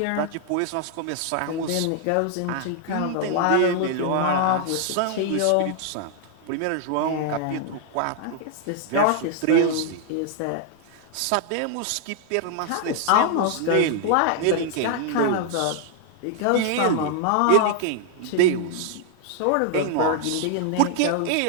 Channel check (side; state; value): both; different; correlation 0.00